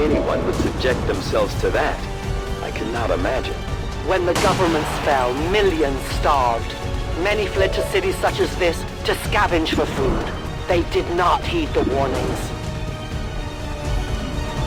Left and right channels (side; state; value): both; identical; correlation 1.00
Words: anyone would subject themselves to that, I cannot imagine. When the governments fell, millions starved. Many fled to cities such as this to scavenge for food. They did not heed the warnings.